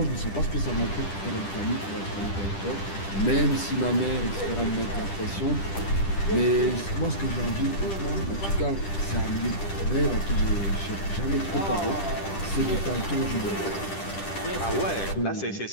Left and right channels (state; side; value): late; right; 10 ms